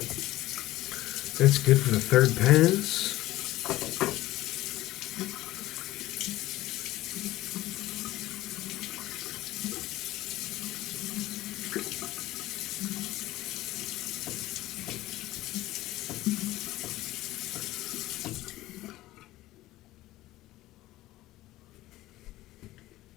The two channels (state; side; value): quieter; right; 16.6 dB